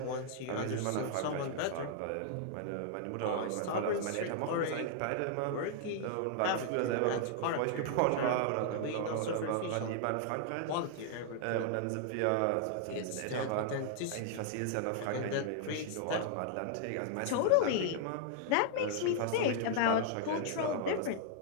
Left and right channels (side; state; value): both; different; correlation -0.01